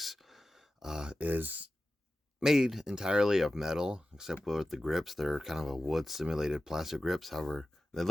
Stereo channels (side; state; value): both; normal; correlation 0.94